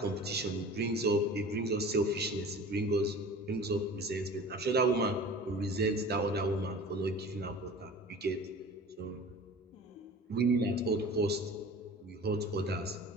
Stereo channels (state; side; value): normal; both; correlation 0.40